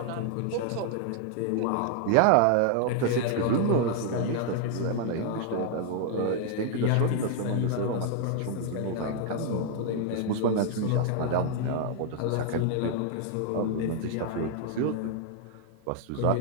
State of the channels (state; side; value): different; both; correlation 0.00